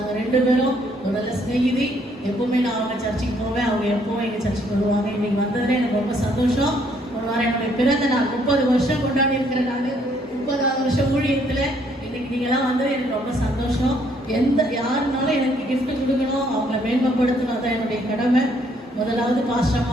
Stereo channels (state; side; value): normal; both; correlation 0.67